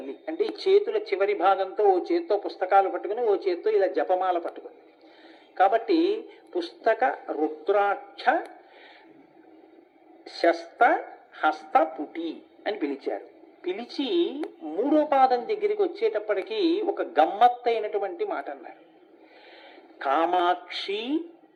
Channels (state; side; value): identical; both; correlation 1.00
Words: అంటే ఈ చేతుల చివరి భాగంతో ఓ చేత్తో పుస్తకాలు పట్టుకుని ఓ చేత్తో ఇలా జపమాల పట్టుకుంది. కాబట్టి పుస్తక రుద్రాక్ష శస్త హస్తపుటి అని పిలిచారు. పిలిచి మూడో పాదం దగ్గరికి వచ్చేటప్పటికీ ఒక గమ్మత్తైనటువంటి మాట అన్నారు. కామాక్షి